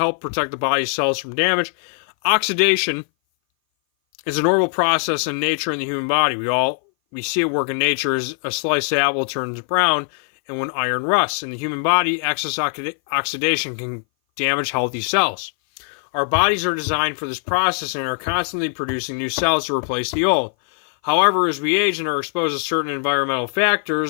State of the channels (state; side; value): silent; right; 59 dB below the other